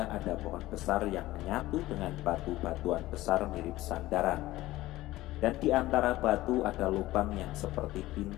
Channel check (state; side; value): quieter; right; 17.0 dB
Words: ada pohon besar yang menyatu dengan batu-batuan besar mirip sandaran. Dan di antara batu ada lubang yang seperti